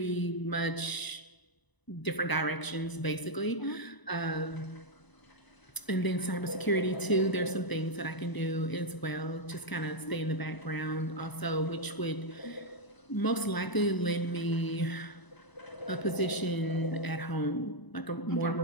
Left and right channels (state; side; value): late; right; 1.0 ms